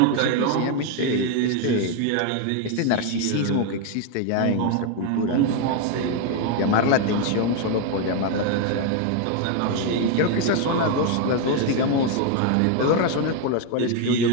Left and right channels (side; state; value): both; different; correlation 0.01